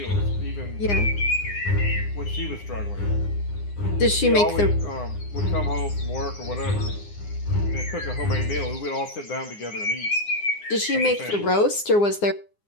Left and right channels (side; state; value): right; late; 9.8 ms